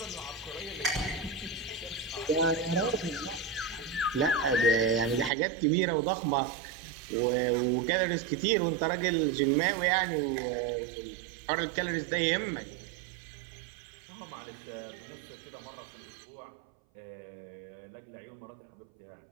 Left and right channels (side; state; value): left; drops out; at 5.3 s